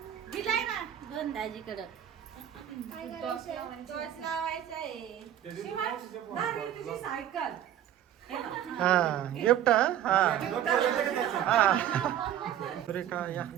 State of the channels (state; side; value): quieter; left; 10.9 dB